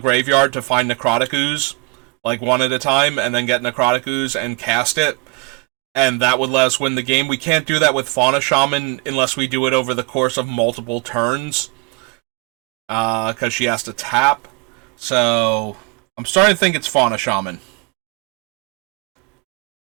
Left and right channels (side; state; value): left; quieter; 30.7 dB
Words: to find Necrotic Ooze, like one at a time, and then get Necrotic Ooze and cast it, and that would let us win the game. We can't do that with Fauna Shaman unless we do it over the course of multiple turns, because she has to tap. So, I'm starting to think it's Fauna Shaman.